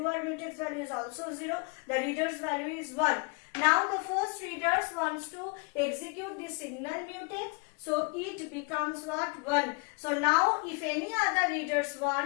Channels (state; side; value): quieter; right; 32.5 dB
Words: mutex value is also 0. The reader's value is 1. Now the first readers wants to execute this signal mutex. So it becomes what? 1. So now if any other readers